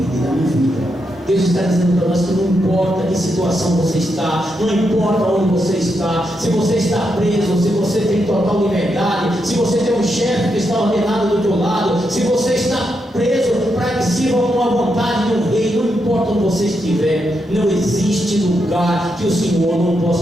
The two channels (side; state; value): both; normal; correlation 0.82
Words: e na minha vida. Deus está dizendo para nós que não importa que situação você está, não importa onde você está, se você está preso, se você tem total liberdade, se você tem um chefe que está ordenado do teu lado, se você está preso para que sirva com a vontade do rei, não importa onde você estiver, não existe lugar que o Senhor não